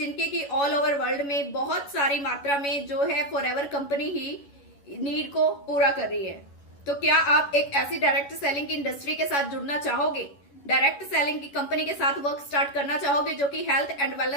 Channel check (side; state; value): right; late; 11 ms